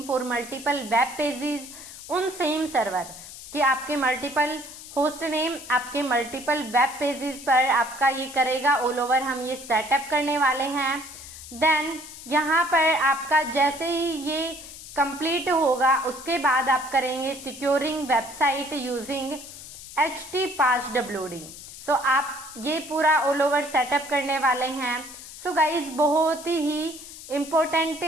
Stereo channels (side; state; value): left; noise; hiss, 14 dB below the sound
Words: for multiple web pages उन सेम सर्वर कि आपके मल्टीपल होस्ट नेम आपके मल्टीपल वेब पेजेस पर आपका ये करेगा ऑल ओवर। हम ये सेटअप करने वाले हैं। देन यहाँ पर आपका जैसे ही ये कंप्लीट होगा उसके बाद आप करेंगे सिक्योरिंग वेबसाइट यूजिंग HTPasswd। सो आप ये पूरा ऑल ओवर सेटअप करने वाले हैं। सो गाइज बहुत ही इम्पोर्टेंट